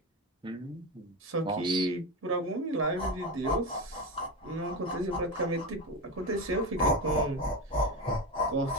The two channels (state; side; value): normal; both; correlation 0.19